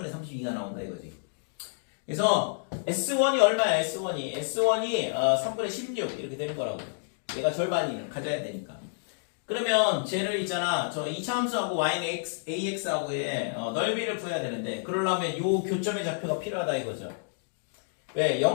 32가 나온다 이거지. 그래서 S1이 얼마야? S1이 3분의 16 이렇게 되는 거라고. 얘가 절반이 가져야 되니까. 그러면 쟤를 있잖아. 저 2차 함수하고 y는 ax하고의 넓이를 구해야 되는데, 그러려면 요 교점의 좌표가 필요하다 이거죠. 왜?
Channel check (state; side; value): silent; right; digital silence